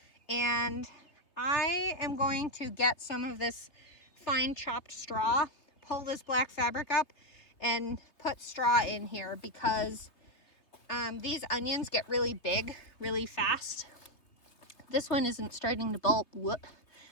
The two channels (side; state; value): right; late; 3.2 ms